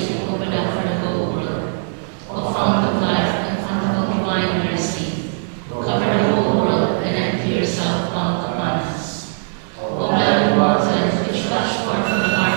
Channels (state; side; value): silent; left; 61 dB below the other